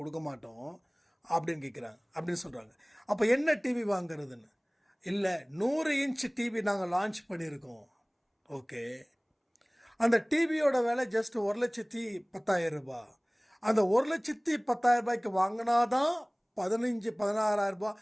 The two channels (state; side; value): identical; both; correlation 1.00